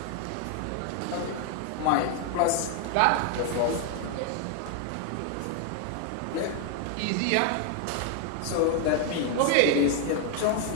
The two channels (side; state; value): both; different; correlation 0.00